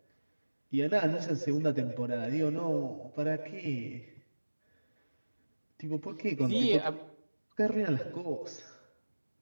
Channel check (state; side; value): inverted; both; correlation -1.00